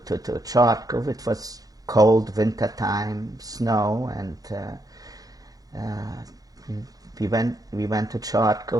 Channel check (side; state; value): left; late; 0.18 ms